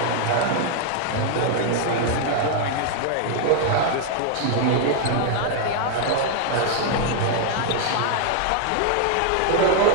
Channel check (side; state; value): both; different; correlation 0.00